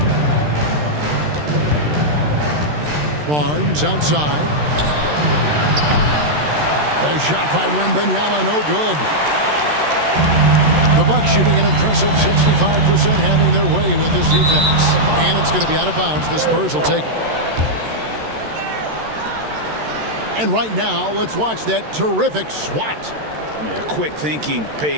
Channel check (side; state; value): left; late; 13 ms